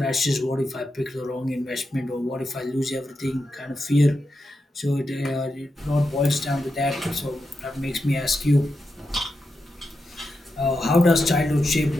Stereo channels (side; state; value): both; normal; correlation 0.88